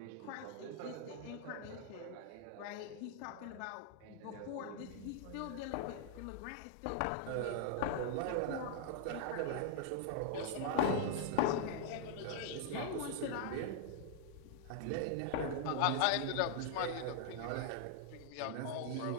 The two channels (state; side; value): different; both; correlation -0.01